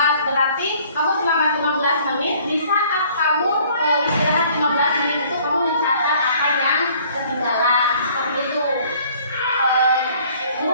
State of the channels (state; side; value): inverted; both; correlation -0.57